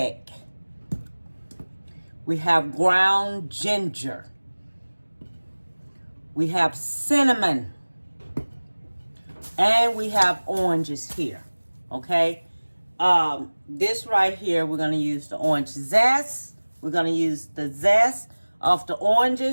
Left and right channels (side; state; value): both; inverted; correlation -1.00